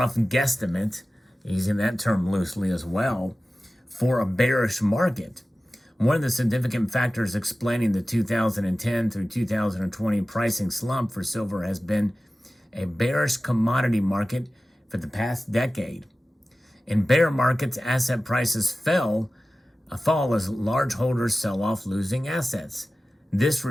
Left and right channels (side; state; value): both; normal; correlation 0.96